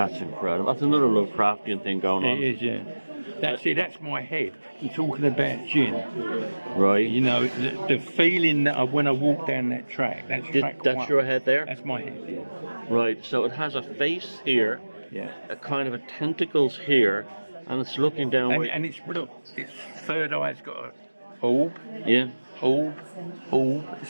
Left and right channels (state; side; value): inverted; both; correlation -1.00